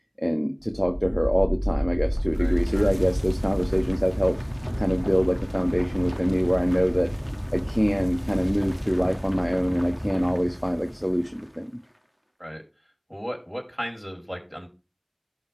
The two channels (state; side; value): identical; both; correlation 1.00